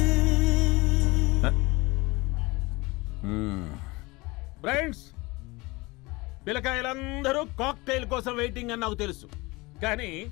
ఫ్రెండ్స్, పిల్లకాయలందరూ కాక్టైల్ కోసం వెయిటింగ్ అని నాకు తెలుసు, కానీ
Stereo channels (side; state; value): right; quieter; 23.3 dB